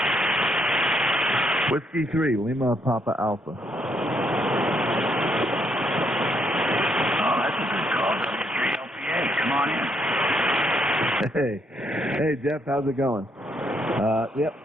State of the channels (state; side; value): normal; both; correlation 0.74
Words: Whiskey 3, Lima Papa Alpha. Oh, that's a good call. W3LPA. Come on in. Hey, Jeff, how's it going? Yep,